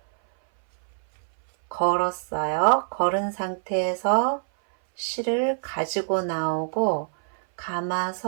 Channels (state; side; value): silent; left; 59 dB below the other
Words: 걸었어요. 걸은 상태에서 실을 가지고 나오고